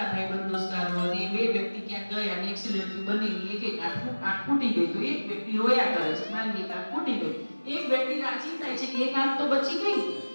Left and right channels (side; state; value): both; inverted; correlation -1.00